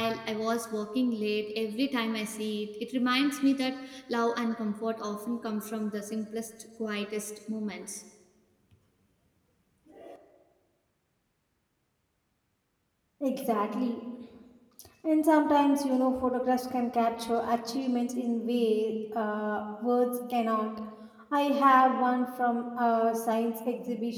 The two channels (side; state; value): both; identical; correlation 1.00